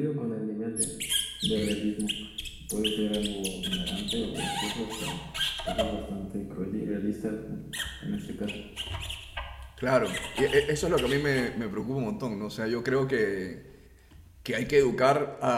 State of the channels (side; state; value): both; identical; correlation 1.00